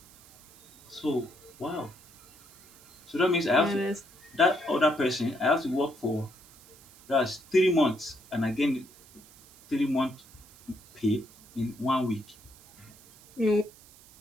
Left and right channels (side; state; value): right; noise; hiss, 24 dB below the sound